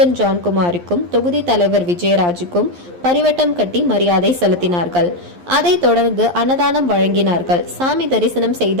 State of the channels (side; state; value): left; late; 11 ms